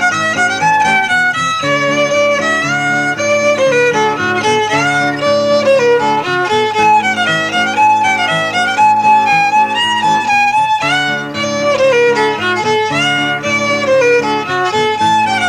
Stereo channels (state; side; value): identical; both; correlation 1.00